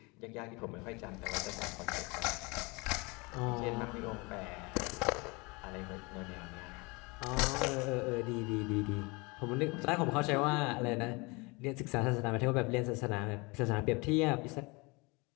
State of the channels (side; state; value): right; quieter; 27.1 dB